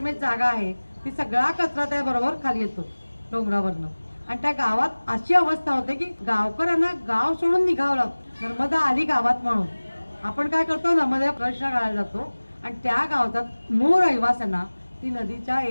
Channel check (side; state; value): both; inverted; correlation -1.00